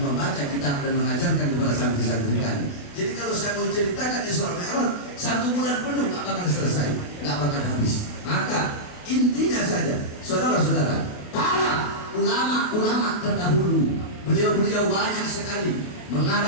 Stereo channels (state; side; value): late; right; 28 ms